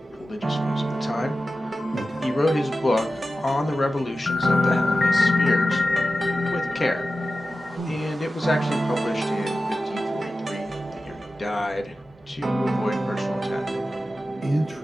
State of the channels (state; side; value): normal; both; correlation 0.93